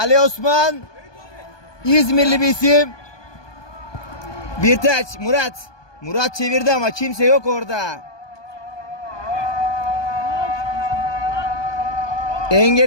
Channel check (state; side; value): late; right; 1.2 ms